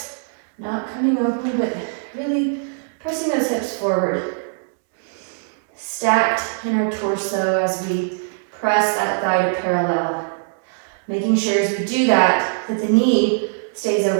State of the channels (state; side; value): silent; left; 65 dB below the other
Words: not coming open, but really pressing those hips forward. Stacked in our torso as we press that thigh to parallel. Making sure as we do that, that the knee stays